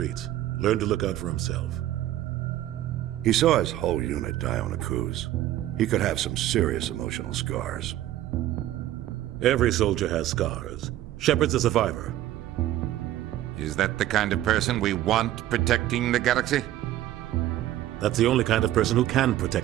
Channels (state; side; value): quieter; left; 13.7 dB